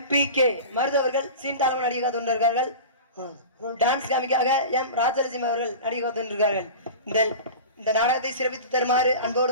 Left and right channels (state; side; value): inverted; both; correlation -0.33